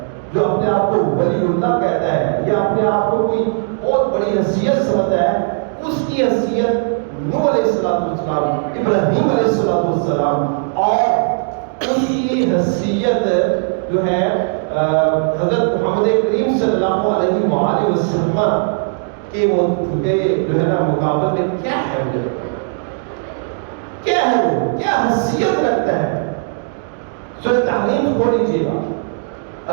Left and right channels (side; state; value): left; silent; digital silence